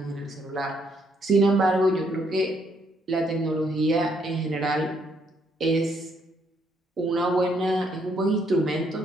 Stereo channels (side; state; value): both; normal; correlation 0.71